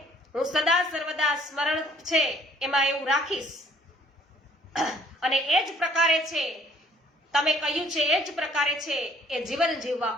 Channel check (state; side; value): normal; both; correlation 0.61